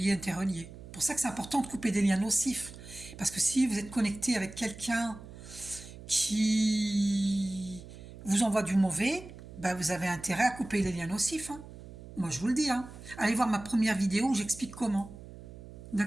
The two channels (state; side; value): noise; right; hum, 15 dB below the sound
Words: interrelié. C'est pour ça que c'est important de couper des liens nocifs. Parce que si vous êtes connecté avec quelqu'un qui vous envoie du mauvais, ben vous avez intérêt à couper les liens nocifs. Hein. Moi, je vous le dis. Hein. Allez voir ma première vidéo où j'explique comment.